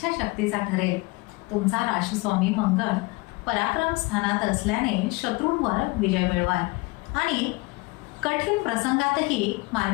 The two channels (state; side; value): quieter; right; 24.6 dB